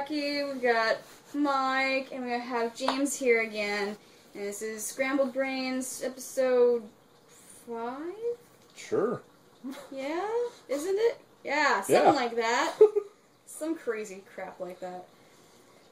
we've got Mike, and we have James here again. And this is Scrambled Brains, episode 5? Sure. Yeah? Isn't it? Yeah, something like that. Some crazy crap like that.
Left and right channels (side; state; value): both; identical; correlation 1.00